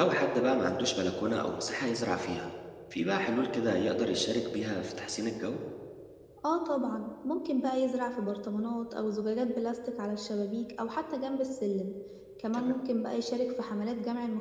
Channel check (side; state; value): both; identical; correlation 1.00